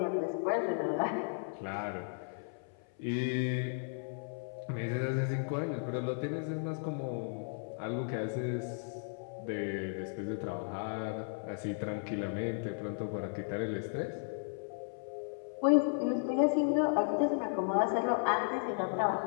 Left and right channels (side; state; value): right; silent; 54 dB below the other